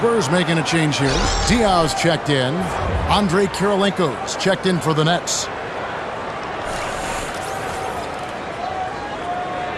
making a change here. Diaw's checked in. Andre Kirilenko's checked in for the Nets.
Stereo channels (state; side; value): identical; both; correlation 1.00